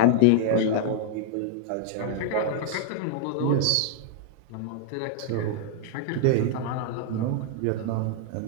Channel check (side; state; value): both; different; correlation -0.01